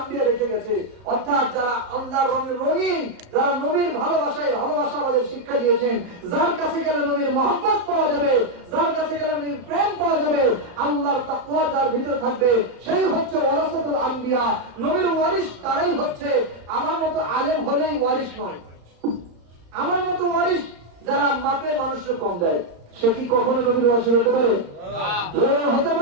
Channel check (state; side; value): late; left; 35 ms